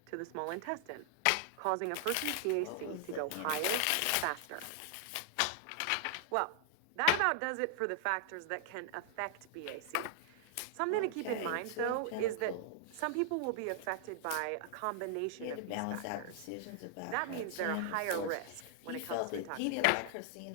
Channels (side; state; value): both; different; correlation -0.01